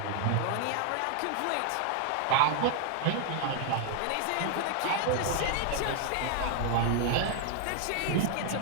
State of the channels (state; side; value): different; both; correlation 0.00